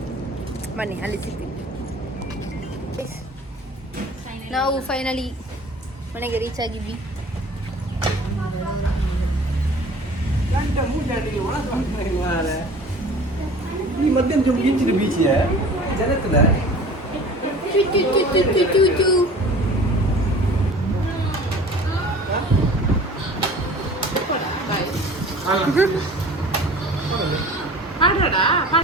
ಬನ್ನಿ ಅಲ್ಲಿ ಸಿಗ್ತೀವಿ. ನಾವು ಫೈನಲಿ ಮನೆಗೆ ರೀಚ್ ಆಗಿದ್ವಿ.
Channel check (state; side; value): normal; both; correlation 0.44